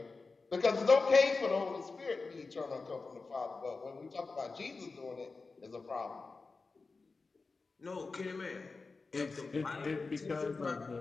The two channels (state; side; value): quieter; right; 4.1 dB